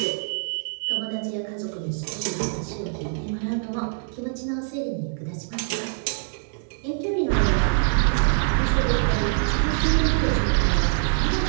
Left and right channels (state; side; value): silent; left; digital silence